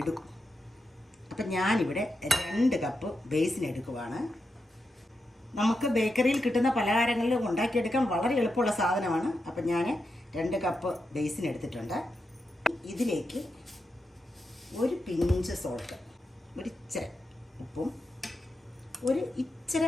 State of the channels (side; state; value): both; normal; correlation 0.87